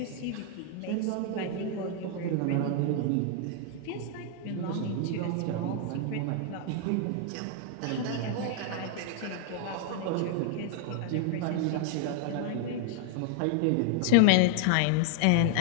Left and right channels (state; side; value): different; both; correlation 0.00